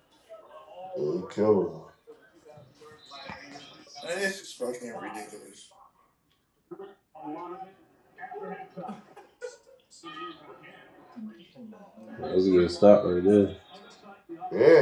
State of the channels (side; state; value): both; identical; correlation 1.00